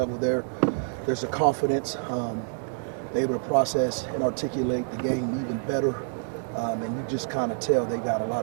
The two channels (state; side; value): silent; left; digital silence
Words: there. There's a confidence. They're able to process and articulate the game even better. And you just kind of tell they got a